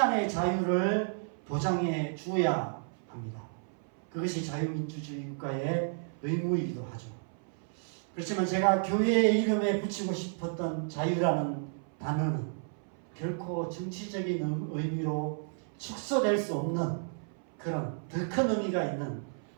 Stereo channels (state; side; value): silent; left; 56 dB below the other